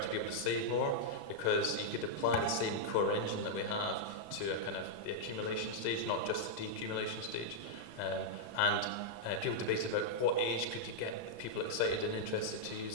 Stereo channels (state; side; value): late; right; 35 ms